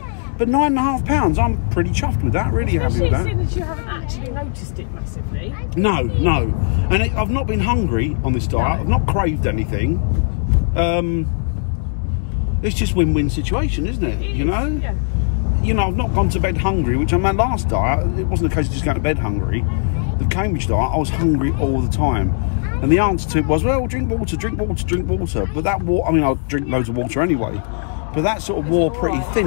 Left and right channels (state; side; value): silent; right; 66 dB below the other